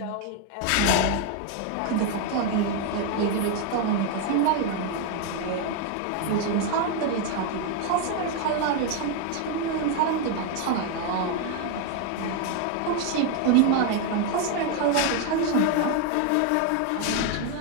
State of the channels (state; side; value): different; both; correlation 0.01